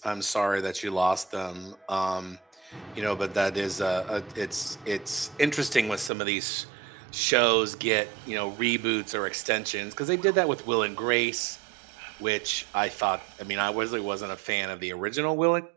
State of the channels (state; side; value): drops out; left; at 6.1 s